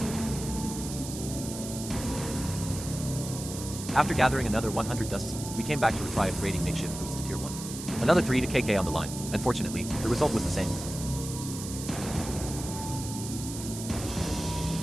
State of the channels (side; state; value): right; noise; hiss, 9 dB below the sound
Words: After gathering another 100 dusts, we came back to try upgrading makeshift boots to Tier 1. Another 3kk on the line. Unfortunately, the result was the same.